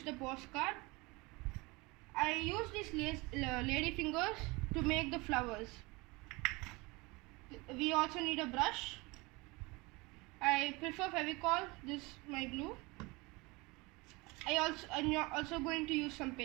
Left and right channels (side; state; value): left; quieter; 24.9 dB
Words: a postcard. I used these lady fingers to make the flowers. We also need a brush. I prefer Fevicol. This is my glue. I'm also going to use some